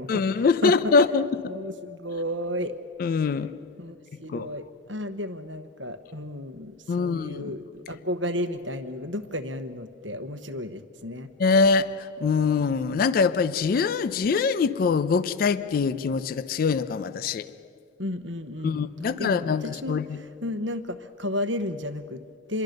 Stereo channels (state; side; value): quieter; right; 4.0 dB